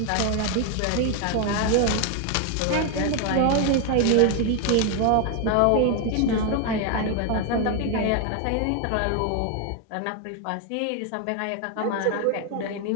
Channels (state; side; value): different; both; correlation 0.01